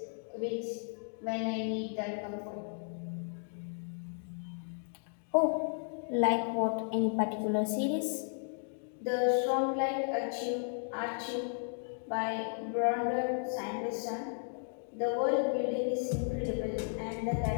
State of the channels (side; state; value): right; silent; 55 dB below the other